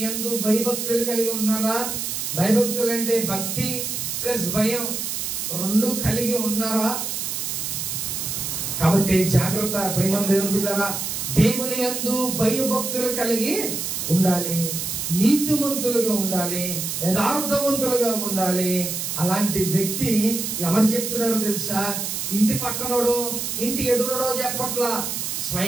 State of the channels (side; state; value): right; noise; hiss, 3 dB below the sound